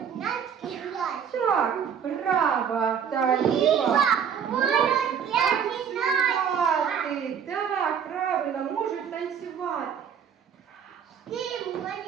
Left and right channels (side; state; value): left; quieter; 7.7 dB